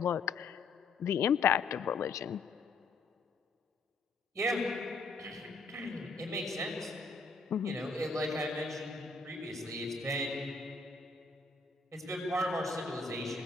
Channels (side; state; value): right; quieter; 3.9 dB